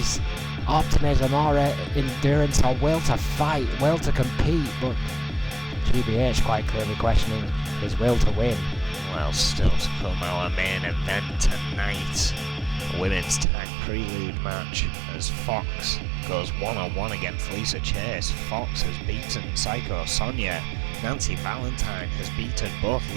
optimism or endurance or will to fight, will to compete, but GBH quite clearly questioning his will to win. Well, still to come, our main event tonight, a women's tag prelude match as Fox goes one-on-one against Lisa Chase. Fox has beaten Psycho Sonia. Nancy Valentine has beaten both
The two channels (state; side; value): drops out; left; at 13.5 s